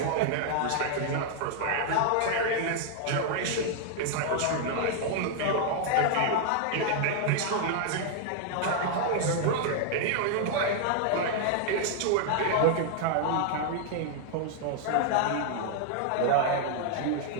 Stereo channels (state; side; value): different; both; correlation 0.00